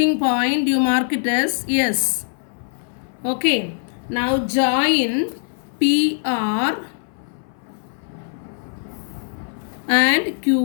point you mark it as S. Okay. Now join PR and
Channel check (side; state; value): right; silent; 61 dB below the other